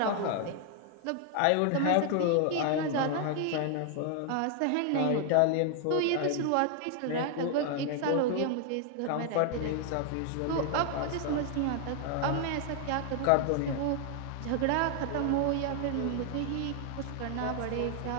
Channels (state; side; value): different; both; correlation 0.00